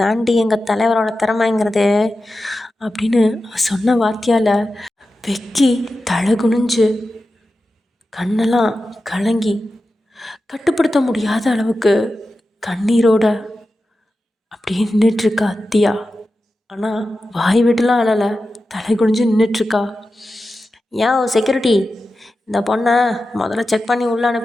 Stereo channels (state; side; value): normal; both; correlation 0.92